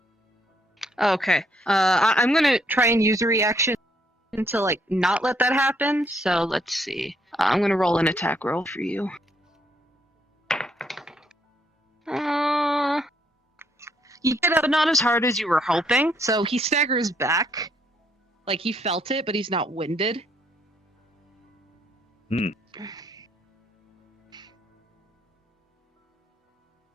Okay. I'm going to try and use a reaction to like not let that happen. So let's see. I'm going to roll an attack roll for you. You get up, not as hard as you were hoping. So he staggers back. Like he felt it, but he's not winded. There's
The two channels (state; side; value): normal; both; correlation 0.70